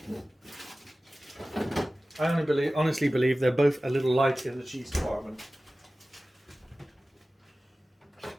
I honestly believe they're both a little light in the cheese department.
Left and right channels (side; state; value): both; normal; correlation 0.96